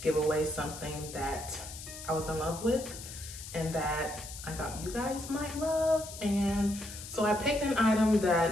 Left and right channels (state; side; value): noise; left; hiss, 12 dB below the sound